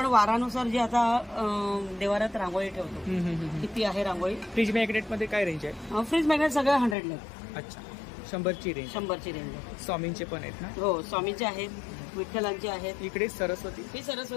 वारानुसार जे आता देवारात रांगोळी ठेवतो किती आहे रांगोळी. फ्रीज मॅग्नेट मध्ये काय रेंज आहे? फ्रीज मॅग्नेट सगळे 100 अच्छा. 100ची रेंज. 100ची रेंज आहे. स्वामींचे पण आहेत ना? हो, स्वामींचे आहेत, विठ्ठलांचे आहेत. इकडे सरस्वती. ही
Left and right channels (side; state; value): right; drops out; at 7.0 s